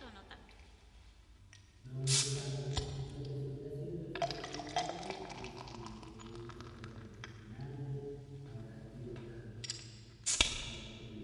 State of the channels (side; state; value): both; identical; correlation 1.00